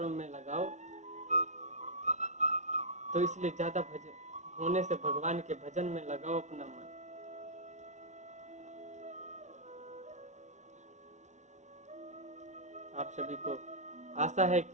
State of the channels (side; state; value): left; late; 0.34 ms